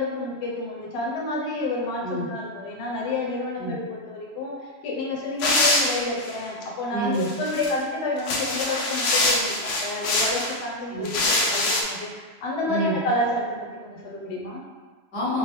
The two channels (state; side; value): late; right; 3.0 ms